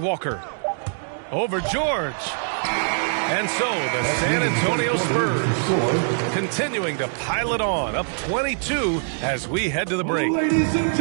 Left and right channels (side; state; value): left; silent; digital silence